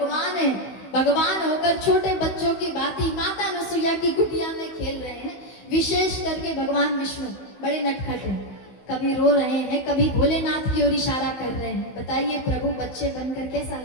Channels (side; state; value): right; late; 16 ms